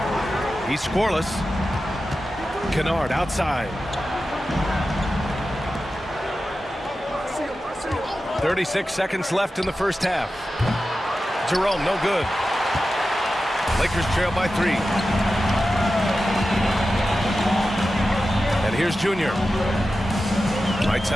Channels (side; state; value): both; normal; correlation 0.93